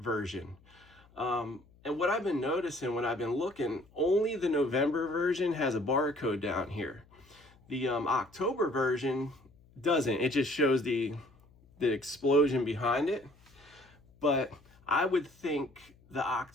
And what I've been noticing when I've been looking, only the November version has a barcode down here. The October version doesn't. It just shows the explosion behind it. But I would think the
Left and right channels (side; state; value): left; noise; hum, 28 dB below the sound